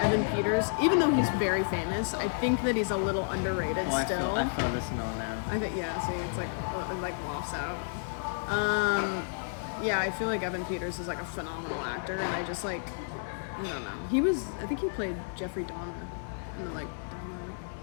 Peters, even though he's very famous, I think that he's a little underrated Oh, still. I felt this and all now. I think yeah. See, it's like it like wafts out. Yeah, I feel like Evan Peters is like a phenomenal actor, and I just like I don't know. I think he played Jeffrey Dahmer in the like Dahmer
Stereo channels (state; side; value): silent; right; digital silence